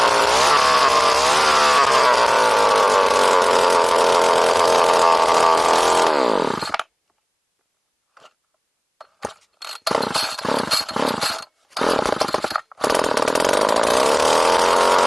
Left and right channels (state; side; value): identical; both; correlation 1.00